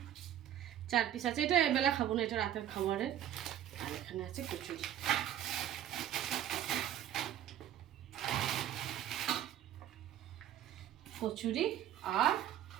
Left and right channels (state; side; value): quieter; left; 11.2 dB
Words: 4 পিস আছে। এটা এবেলা খাবো না, এটা রাতের খাবারের। আর এখানে আছে কচুরি, কচুরি আর